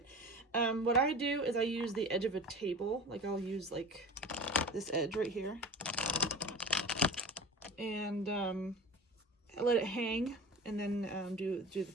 What I do is I use the edge of a table, like I'll use like this edge right here, and I let it hang, and then do the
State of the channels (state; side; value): normal; both; correlation 0.34